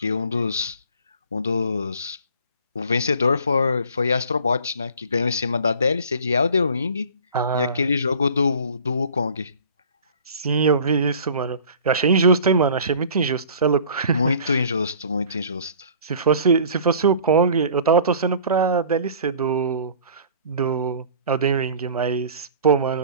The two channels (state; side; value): inverted; both; correlation -0.45